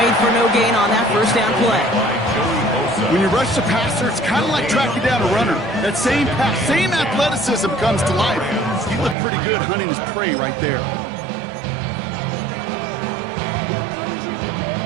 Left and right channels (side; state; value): left; drops out; at 9.2 s